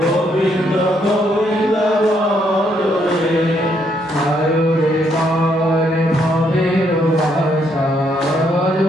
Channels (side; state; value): both; normal; correlation 0.73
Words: গোবিন্দ গোবিন্দ বল রে। আরো রে মন ভবের ভাষা